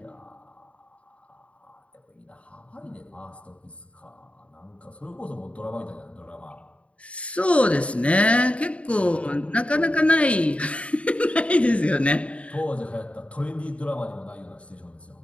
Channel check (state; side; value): late; right; 0.063 ms